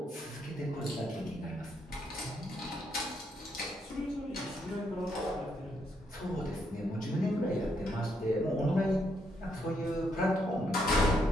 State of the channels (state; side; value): normal; both; correlation 0.76